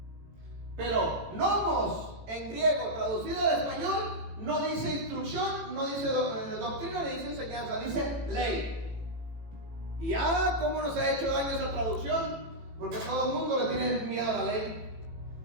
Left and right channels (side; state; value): left; late; 18 ms